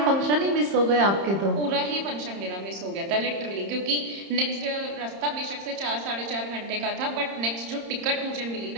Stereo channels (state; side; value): late; left; 30 ms